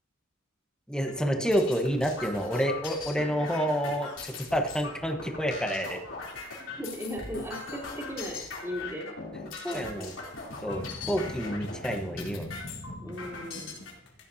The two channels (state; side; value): normal; both; correlation 0.68